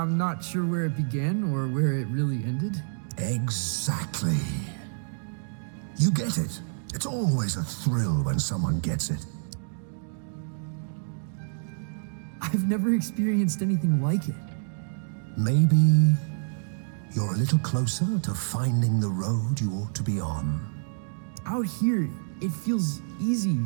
not sure where it began or where it really ended. Exactly. You get it. It's always a thrill when someone gets it. I've never experienced anything like it. Maybe you're a little closer to finding the road you ought to be on. Out here, it feels easy,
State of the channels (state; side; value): silent; left; digital silence